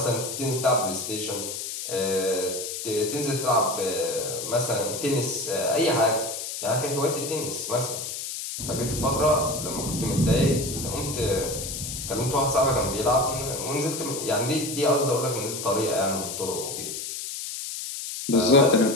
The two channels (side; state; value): left; noise; hiss, 6 dB below the sound